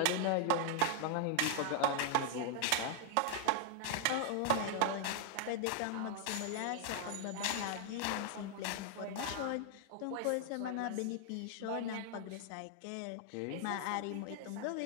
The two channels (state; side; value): different; both; correlation 0.00